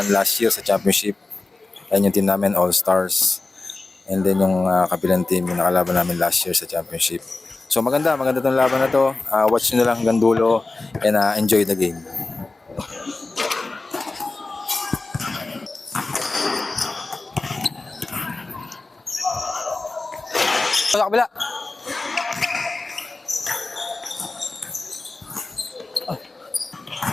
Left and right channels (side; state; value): right; quieter; 3.3 dB